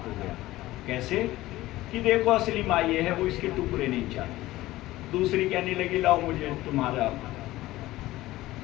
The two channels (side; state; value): right; quieter; 17.0 dB